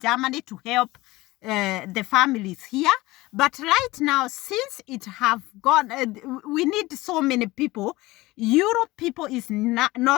to help the families here. But right now, since it have gone, we need so many people. Europe people is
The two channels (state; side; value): quieter; right; 19.7 dB